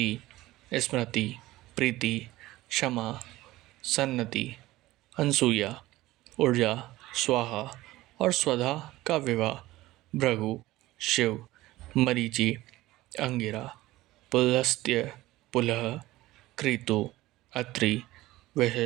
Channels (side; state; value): left; quieter; 17.4 dB